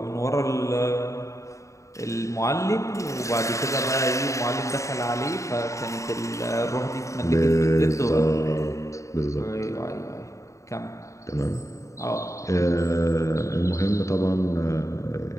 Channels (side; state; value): right; late; 0.15 ms